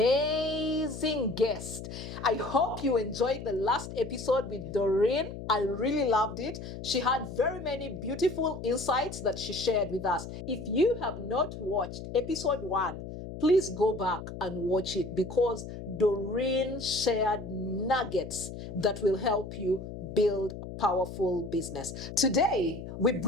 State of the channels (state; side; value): noise; left; hum, 10 dB below the sound